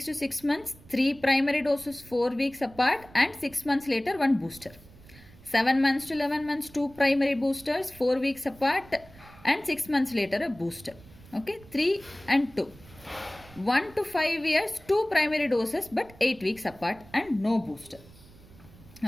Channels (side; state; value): right; noise; rumble, 22 dB below the sound